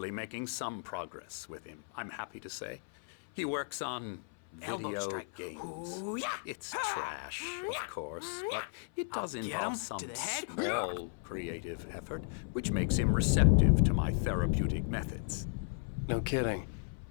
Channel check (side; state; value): right; silent; 55 dB below the other